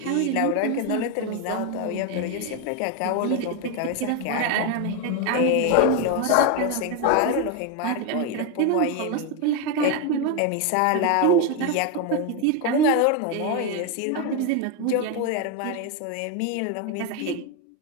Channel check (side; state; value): both; different; correlation 0.02